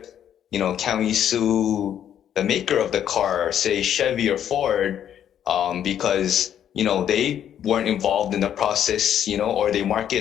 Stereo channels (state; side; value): quieter; right; 9.8 dB